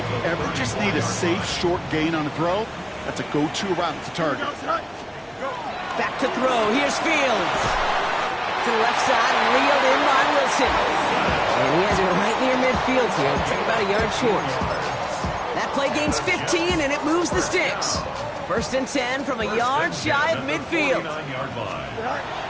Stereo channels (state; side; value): identical; both; correlation 1.00